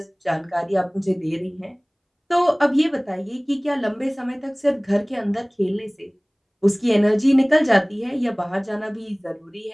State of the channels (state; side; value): identical; both; correlation 1.00